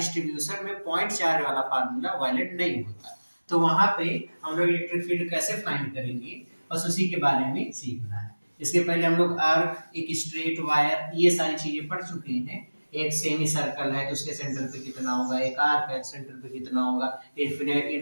में पॉइंट चार्ज वाला फार्मूला वैलिड नहीं होता, तो वहां पे हम लोग इलेक्ट्रिक फील्ड कैसे फाइंड करेंगे बस उसी के बारे में सीखना है। इसके पहले हम लोग आर्क, एक स्ट्रेट वायर, ये सारी चीजें पढ़ चुके हैं। एक सेमी सर्कल है तो उसके सेंटर पे कितना होगा, एक आर्क है सेंटर पे कितना होगा,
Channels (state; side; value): inverted; both; correlation -1.00